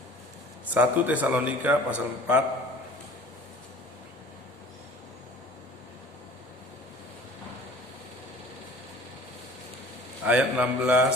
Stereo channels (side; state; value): both; normal; correlation 0.46